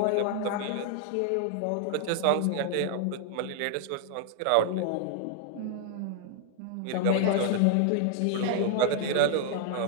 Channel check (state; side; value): different; both; correlation 0.00